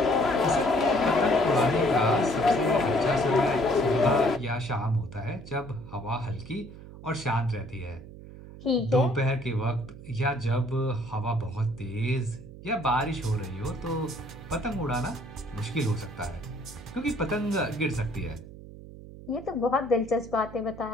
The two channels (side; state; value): right; noise; hum, 16 dB below the sound